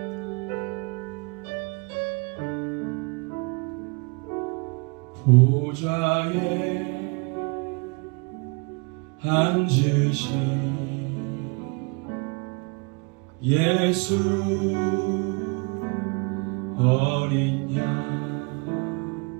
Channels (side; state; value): left; quieter; 32.1 dB